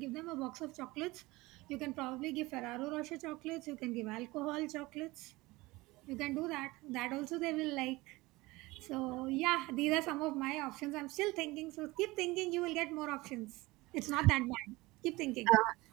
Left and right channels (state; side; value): quieter; left; 21.1 dB